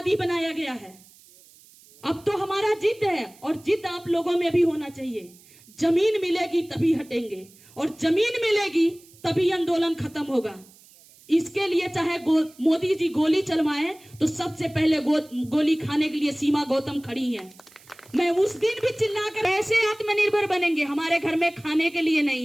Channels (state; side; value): noise; right; hiss, 26 dB below the sound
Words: बनाया गया है। अब तो हमारा जिद है और जिद आप लोगों में भी होना चाहिए। जमीन मिलेगी तभी हटेंगे और जमीन मिलेगी तभी आंदोलन खत्म होगा। इसके लिए चाहे मोदी जी गोली चलवाएं तो सबसे पहले गोली खाने के लिए सीमा गौतम खड़ी है। मैं उस दिन भी चिल्लाकर ऐसे आत्मनिर्भर बनेंगे। हमारे घर में खाने के लिए